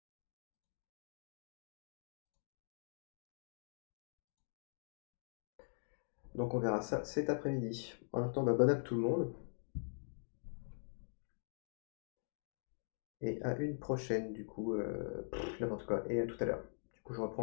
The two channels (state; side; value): silent; right; digital silence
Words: Donc on verra ça cet après-midi. En même temps, bah, bonne app tout le monde. Et à une prochaine, du coup, n'importe quoi. Et à tout à l'heure. Du coup, je